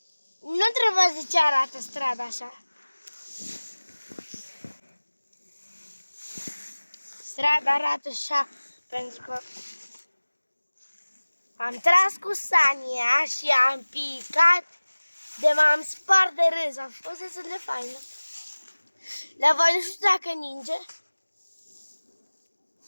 nu trebuie de ce arată strada așa. Strada arată așa pentru că am tras cu sania și am picat de m-am spart de râs. A fost destul de faină. La voi nu știu dacă ninge.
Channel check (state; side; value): inverted; both; correlation -1.00